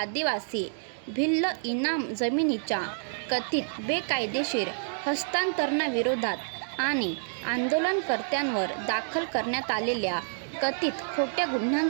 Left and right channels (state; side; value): silent; left; digital silence